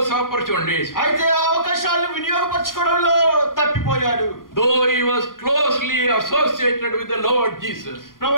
opportunities. అయితే ఆ అవకాశాలను వినియోగపరచుకోవడంలో తప్పిపోయాడు. Though he was closely associated with the Lord Jesus.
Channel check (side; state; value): right; late; 0.90 ms